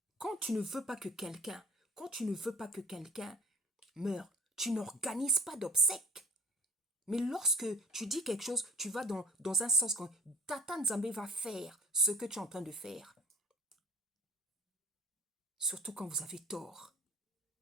Quand tu ne veux pas que quelqu'un meure, tu n'organises pas d'obsèques. Mais lorsque tu dis quelque chose, tu vas dans un sens quand Tata Nzambe va faire ce que tu es en train de faire. Surtout quand vous avez tort.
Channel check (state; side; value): normal; both; correlation 0.47